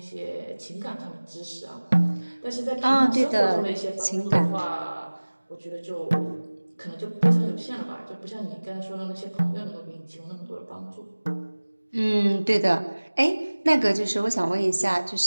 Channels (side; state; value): both; inverted; correlation -1.00